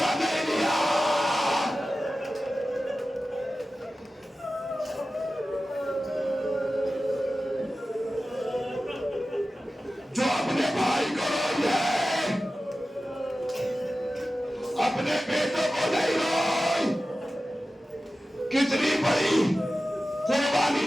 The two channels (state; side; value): normal; both; correlation 0.94